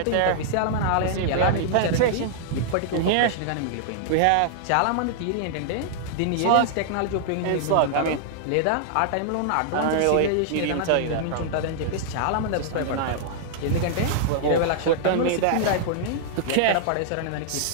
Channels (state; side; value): different; both; correlation -0.01